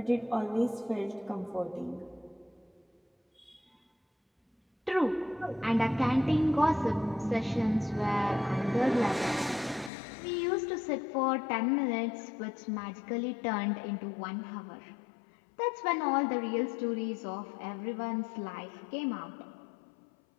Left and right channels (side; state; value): right; drops out; at 9.9 s